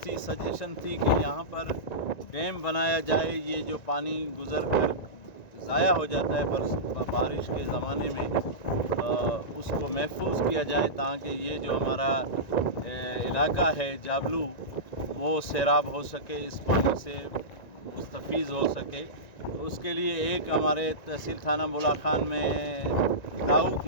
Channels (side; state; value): right; late; 1.9 ms